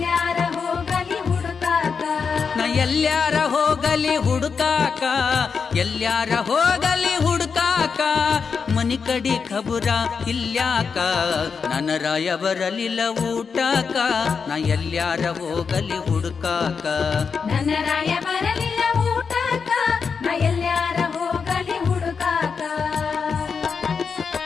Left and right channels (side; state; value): right; quieter; 5.7 dB